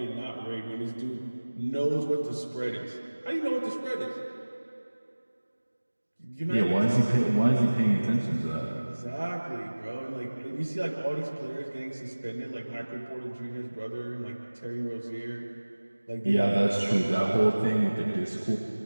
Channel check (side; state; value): both; inverted; correlation -1.00